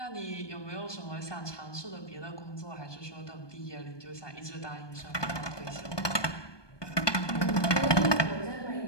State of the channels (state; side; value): late; right; 1.2 ms